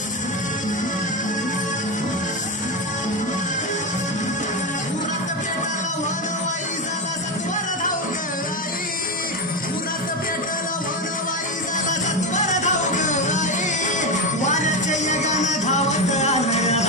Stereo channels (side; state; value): both; normal; correlation 0.13